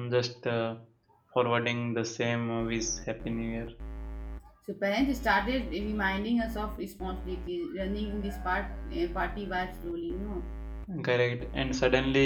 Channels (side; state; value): both; identical; correlation 1.00